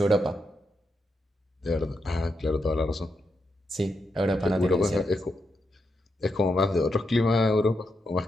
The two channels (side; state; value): both; normal; correlation 0.83